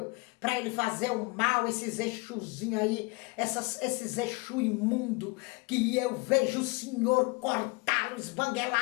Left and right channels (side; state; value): right; quieter; 27.4 dB